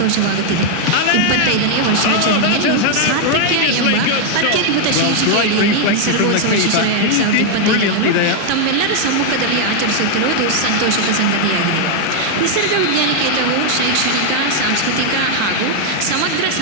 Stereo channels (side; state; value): both; different; correlation 0.00